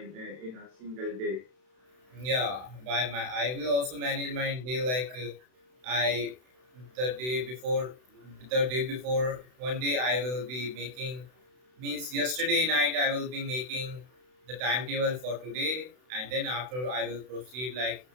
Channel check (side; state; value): left; late; 32 ms